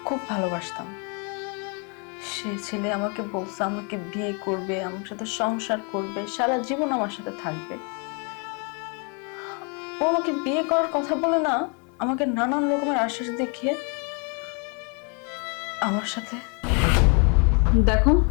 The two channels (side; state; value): right; quieter; 35.2 dB